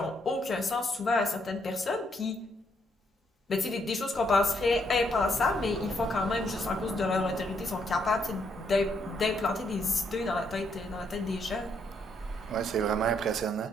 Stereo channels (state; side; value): normal; both; correlation 0.74